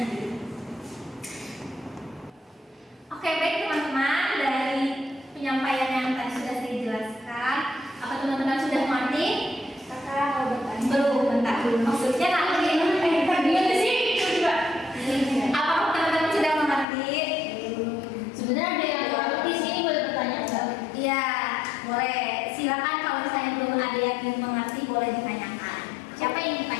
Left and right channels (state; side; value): drops out; right; at 16.9 s